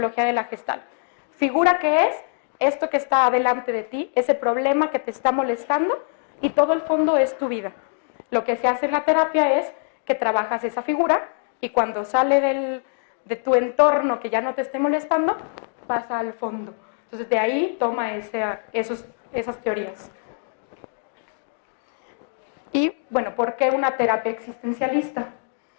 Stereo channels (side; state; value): right; silent; digital silence